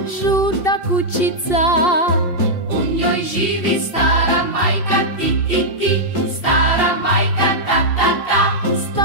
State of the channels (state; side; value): late; right; 2.7 ms